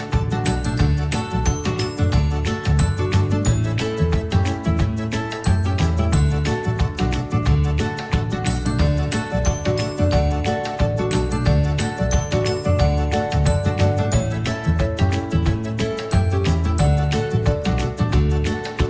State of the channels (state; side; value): identical; both; correlation 1.00